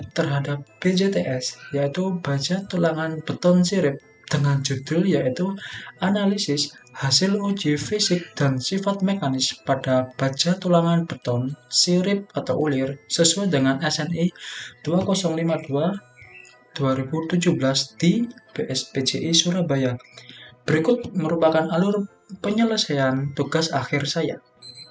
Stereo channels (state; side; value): identical; both; correlation 1.00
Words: terhadap BJTS, yaitu baja tulangan beton sirip, dengan judul yaitu Analisis Hasil Uji Fisik dan Sifat Mekanis pada Baja Tulangan Beton Sirip atau Ulir sesuai dengan SNI 2052-2017 di BSPJI Surabaya. Berikut merupakan alur penyelesaian tugas akhir saya.